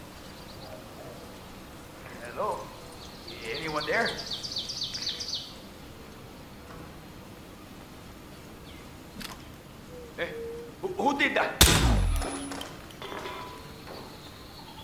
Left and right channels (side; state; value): both; identical; correlation 1.00